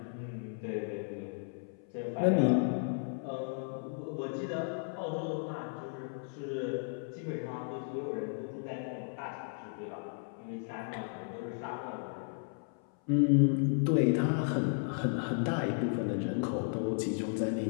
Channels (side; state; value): right; silent; 55 dB below the other